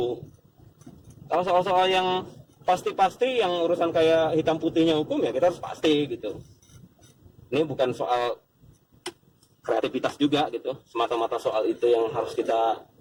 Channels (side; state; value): both; identical; correlation 1.00